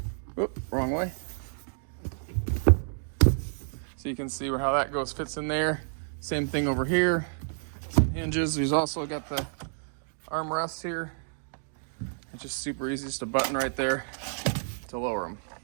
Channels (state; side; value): silent; left; digital silence